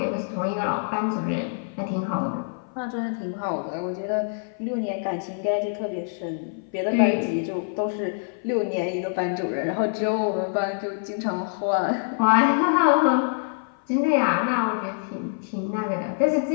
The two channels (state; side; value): silent; right; 58 dB below the other